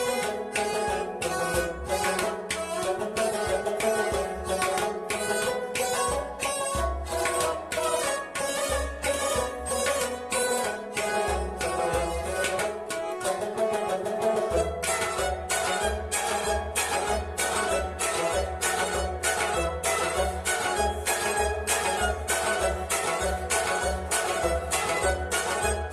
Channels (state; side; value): identical; both; correlation 1.00